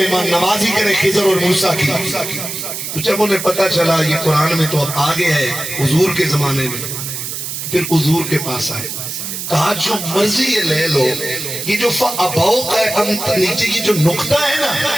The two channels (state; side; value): noise; right; hiss, 6 dB below the sound